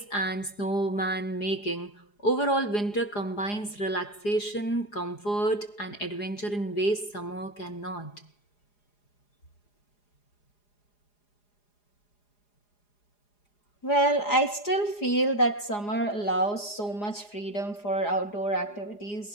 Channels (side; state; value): right; late; 4.9 ms